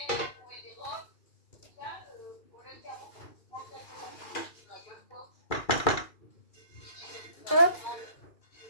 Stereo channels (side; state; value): right; late; 2.4 ms